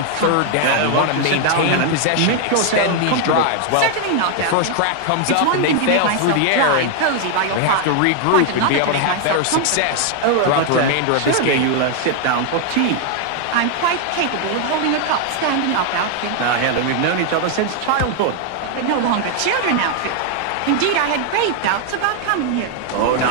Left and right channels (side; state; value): both; different; correlation 0.00